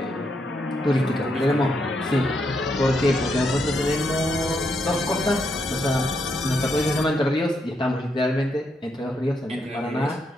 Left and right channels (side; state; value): both; normal; correlation 0.79